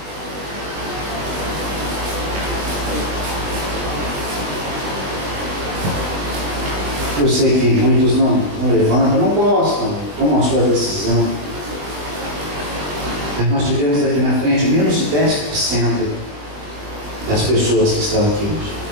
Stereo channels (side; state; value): left; late; 21 ms